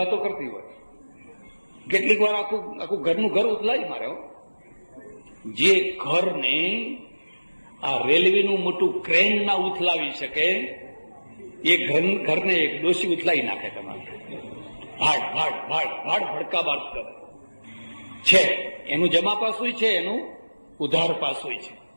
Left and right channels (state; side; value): inverted; both; correlation -1.00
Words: કરતી હોય. કેટલીક વાર આખું ઘરનું ઘર ઉથલાઈ મારે. જે ઘરને આ રેલવેનું મોટું ક્રેન ના ઉથલાવી શકે, એ ઘરને એક ડોશી ઉથલાઈ નાખે. તમારે ભાડ ભાડ ભાડ ભાડ ભડકા બાદ કરે છે. એનું જમા પાસું છે, એનું ઉધાર પાસું છે.